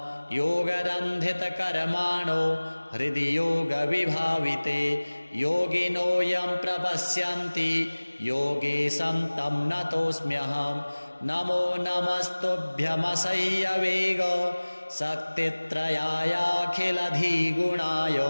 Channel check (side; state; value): both; inverted; correlation -1.00